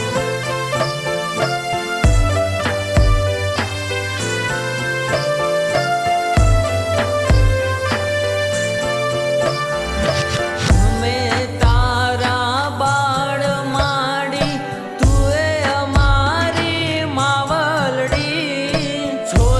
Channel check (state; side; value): identical; both; correlation 1.00